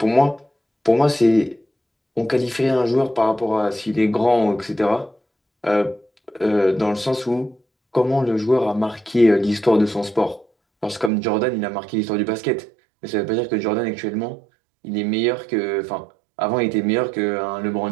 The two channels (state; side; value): drops out; left; at 11.1 s